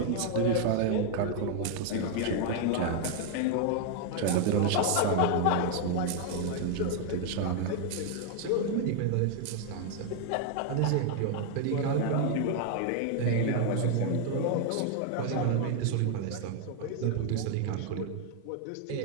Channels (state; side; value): different; both; correlation 0.00